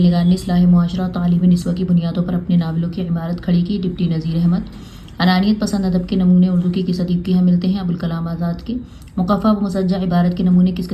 نگار نے اصلاح معاشرہ اور تعلیم نسواں کی بنیادوں پر اپنے ناولوں کی عمارت کھڑی کی؟ ڈپٹی نذیر احمد۔ انانیت پسند ادب کے نمونے اردو کی کس ادیب کے یہاں ملتے ہیں؟ ابوالکلام آزاد کے۔ مقفع و مسجع عبارت کے نمونے کس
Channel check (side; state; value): both; identical; correlation 1.00